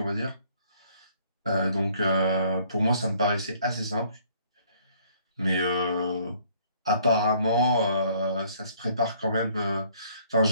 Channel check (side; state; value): both; inverted; correlation -0.61